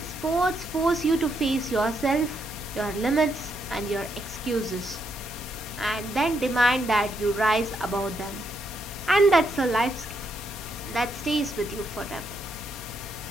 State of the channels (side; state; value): both; normal; correlation 0.78